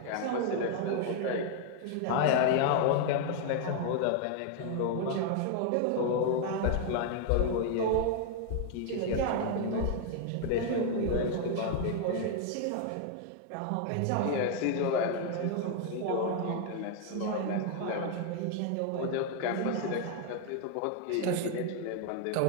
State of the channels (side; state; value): both; different; correlation 0.00